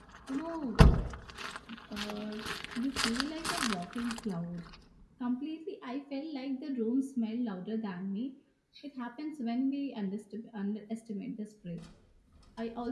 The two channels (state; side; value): identical; both; correlation 1.00